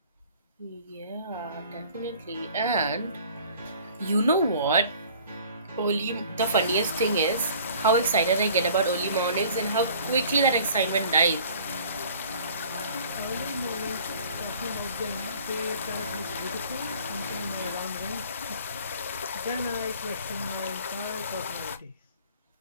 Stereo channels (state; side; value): inverted; both; correlation -0.50